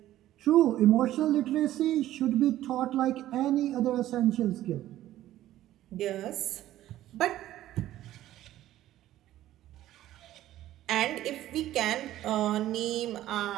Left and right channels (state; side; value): quieter; left; 13.8 dB